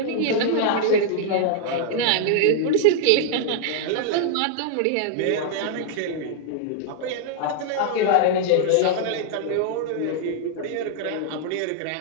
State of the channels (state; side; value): different; both; correlation -0.01